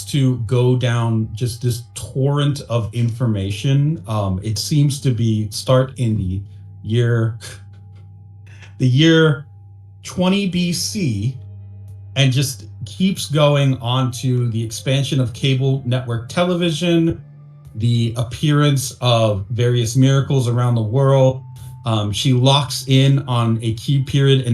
to go down just this torrent of information. It seems to start in the year 20 BC and just keeps going on to the expansion of cable network television, the appearance of various miracles around the world. She locks in on a key period in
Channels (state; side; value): identical; both; correlation 1.00